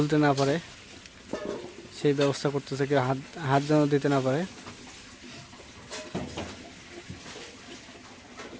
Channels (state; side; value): identical; both; correlation 1.00